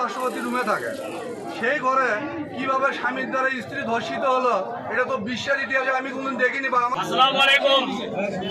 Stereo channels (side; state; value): both; identical; correlation 1.00